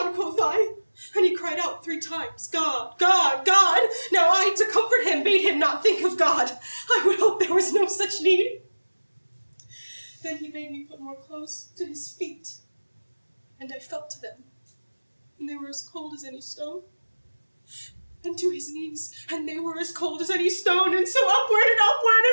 quoth I, and he cried out 3 times, God, God, God. Now I, to comfort him, bade him not think of God. I would hope there was no such need. Then he bade me put more clothes to his feet, and I felt to them. and they were as cold as any stone. And to his knees, and they were as cold as any stone, and so upward, and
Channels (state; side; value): inverted; both; correlation -1.00